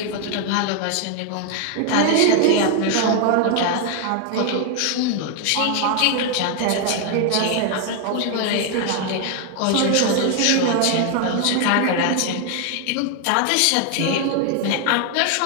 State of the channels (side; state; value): both; different; correlation 0.00